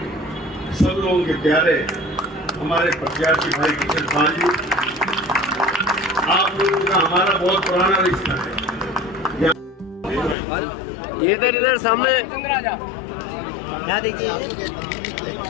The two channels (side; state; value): right; drops out; at 10.4 s